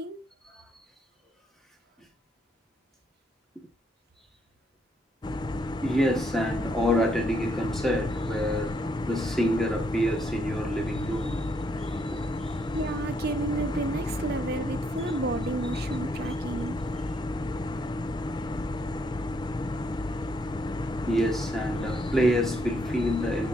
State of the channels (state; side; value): normal; both; correlation 0.73